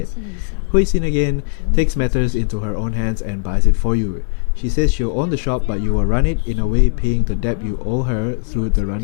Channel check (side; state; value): right; silent; digital silence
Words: Huixin again takes matters into her own hands and buys it for you. She says she'll own the shop, but you will run it, in a way paying the debt you owe her through the